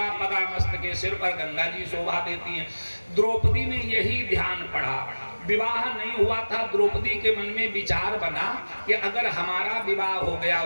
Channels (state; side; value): inverted; both; correlation -1.00